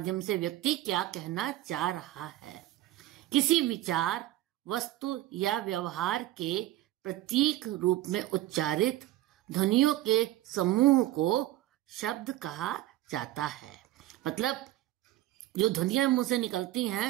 से व्यक्ति क्या कहना चाह रहा है। किसी विचार, वस्तु या व्यवहार के प्रतीक रूप में उच्चारित ध्वनियों के समूह को शब्द कहा जाता है। मतलब जो ध्वनियां मुंह से निकलती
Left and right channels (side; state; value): left; quieter; 15.3 dB